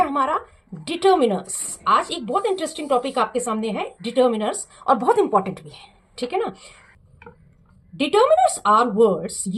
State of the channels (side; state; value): both; identical; correlation 1.00